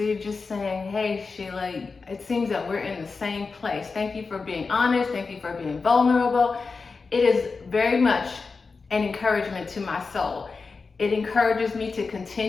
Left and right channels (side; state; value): right; quieter; 4.5 dB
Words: just saying, hey Sheila, it seems that we're in the same place. Thank you for being honest. Thank you for being vulnerable. It is very much an encouragement to my soul. It encourages me to